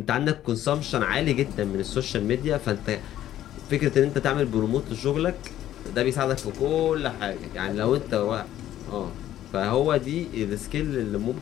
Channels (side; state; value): right; quieter; 12.4 dB